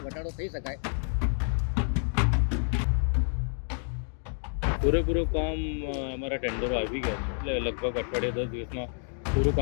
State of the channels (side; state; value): right; silent; 59 dB below the other